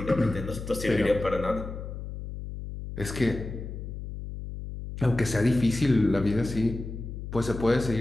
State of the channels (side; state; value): left; noise; hum, 8 dB below the sound